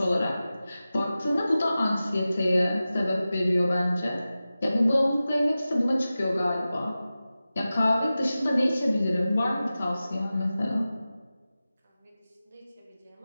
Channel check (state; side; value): inverted; both; correlation -0.95